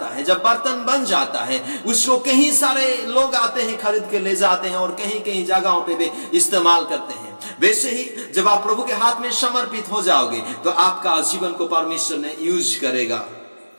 है, जब बर्तन बन जाता है, उसको कहीं सारे लोग आते हैं, खरीद के ले जाते हैं और कहीं कहीं जगहों पे भी इस्तेमाल करते हैं। वैसे ही जब आप प्रभु के हाथ में समर्पित हो जाओगे तो आपका जीवन को परमेश्वर ने यूज करेगा।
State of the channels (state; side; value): inverted; both; correlation -1.00